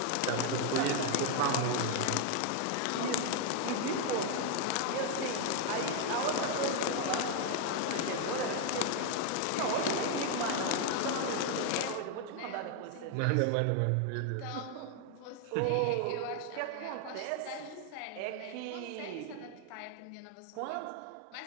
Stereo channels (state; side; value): different; both; correlation 0.01